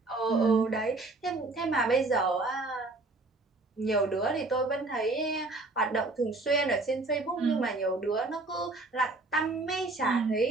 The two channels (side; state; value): left; quieter; 3.2 dB